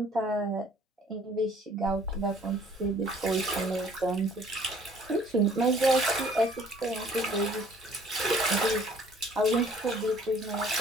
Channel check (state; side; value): normal; both; correlation 0.57